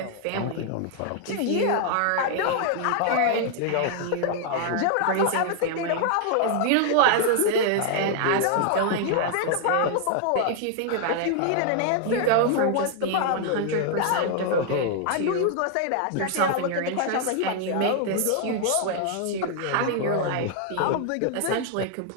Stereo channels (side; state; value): both; different; correlation 0.00